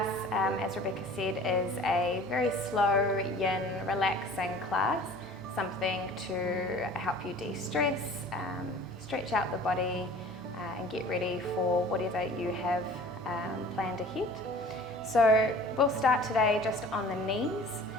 as Rebecca said, is a very slow, yin, relaxing class, something to help you de-stress, stretch out the body, and get ready for whatever you have planned ahead. So we'll start today just on the knees,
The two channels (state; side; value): normal; both; correlation 0.45